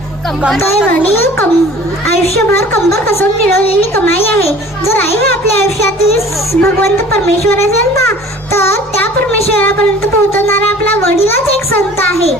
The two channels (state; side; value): normal; both; correlation 0.47